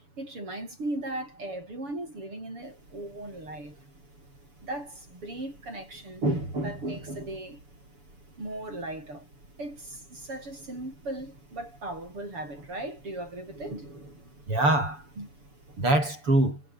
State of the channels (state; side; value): late; left; 7.0 ms